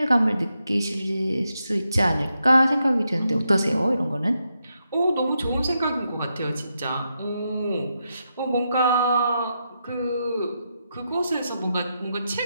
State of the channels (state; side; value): inverted; both; correlation -0.84